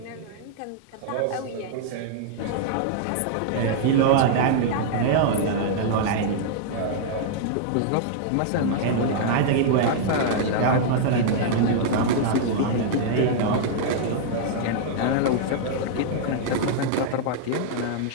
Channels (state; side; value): different; both; correlation -0.01